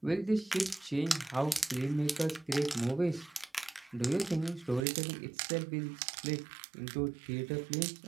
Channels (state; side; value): drops out; left; at 4.9 s